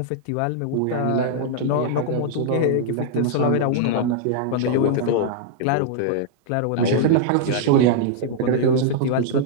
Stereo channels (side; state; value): both; different; correlation -0.01